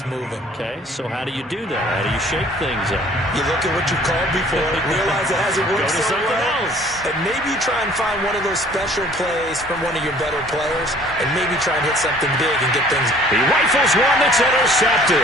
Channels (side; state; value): both; normal; correlation 0.54